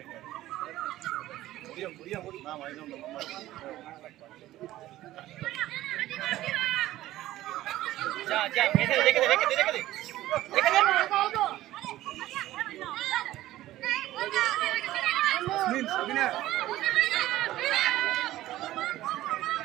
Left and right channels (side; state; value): left; quieter; 15.2 dB